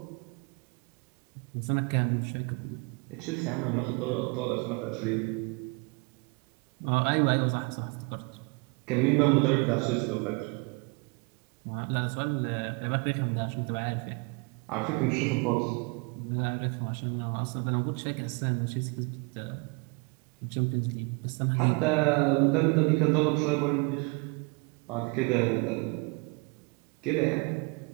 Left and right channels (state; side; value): quieter; left; 30.2 dB